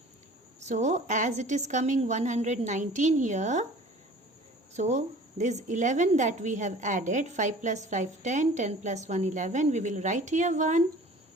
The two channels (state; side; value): normal; both; correlation 0.46